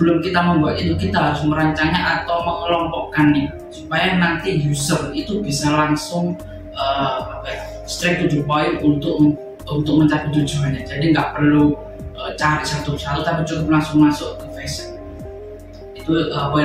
kita membuat itu, kita harus merancangnya atau mengelompokkannya supaya nanti user itu bisa langsung straight to the point untuk mencapai tujuannya. Jadi nggak perlu cari satu-satu, tapi cukup langsung masuk ke fashion. Itu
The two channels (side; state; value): both; identical; correlation 1.00